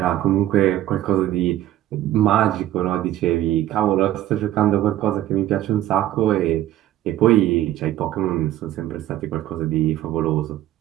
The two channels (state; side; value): quieter; left; 13.5 dB